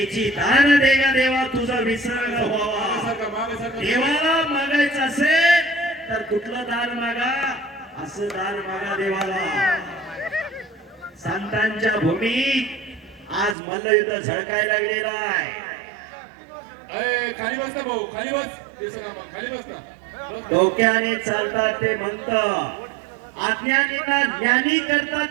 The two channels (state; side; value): drops out; left; at 13.6 s